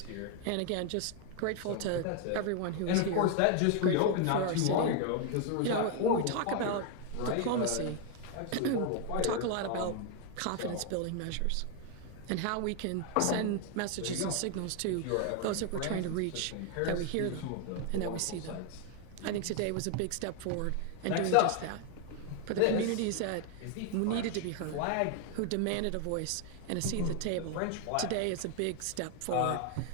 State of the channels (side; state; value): both; different; correlation 0.01